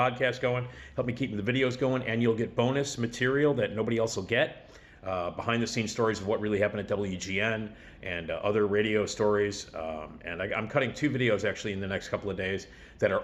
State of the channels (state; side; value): identical; both; correlation 1.00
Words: going, help me keep the videos going, and you'll get bonus material that nobody else will get. Behind the scenes stories of what really happened at WGN and other radio stories. And I'm cutting 2 videos actually in the next couple of days that are